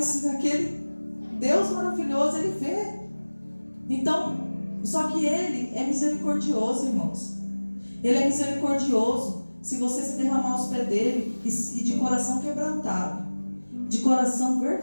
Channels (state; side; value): inverted; both; correlation -1.00